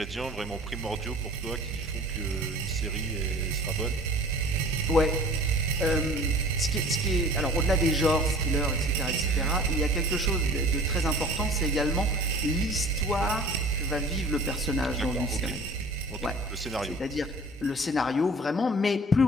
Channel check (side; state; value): both; normal; correlation 0.45